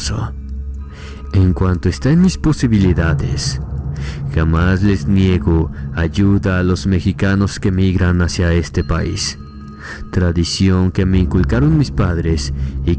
En cuanto está en mis posibilidades, jamás les niego ayuda a los mexicanos que migran hacia este país. Tradición que me inculcaron mis padres y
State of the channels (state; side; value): identical; both; correlation 1.00